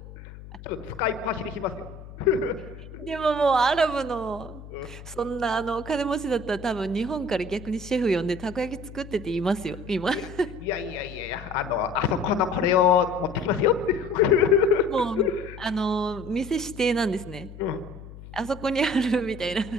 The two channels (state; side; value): noise; left; hum, 15 dB below the sound